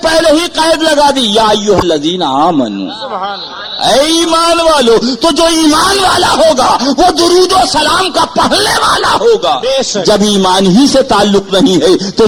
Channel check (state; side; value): identical; both; correlation 1.00